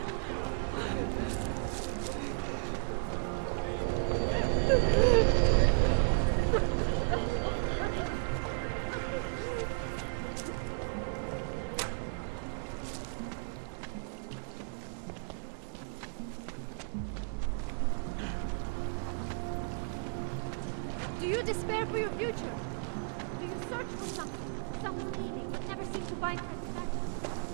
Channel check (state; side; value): silent; left; digital silence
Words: Do you despair for your future? Do you search for something, some meaning, but never seem to find satisfaction?